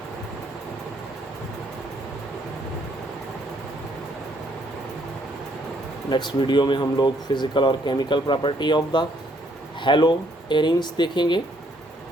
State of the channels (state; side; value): normal; both; correlation 0.68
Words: नेक्स्ट वीडियो में हम लोग फिज़िकल और chemical property of the haloarenes देखेंगे।